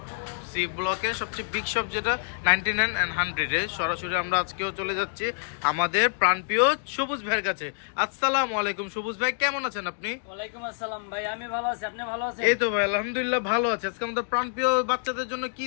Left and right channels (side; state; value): right; silent; digital silence